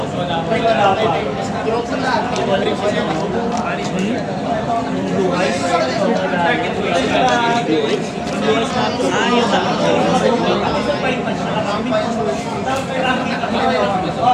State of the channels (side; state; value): both; identical; correlation 1.00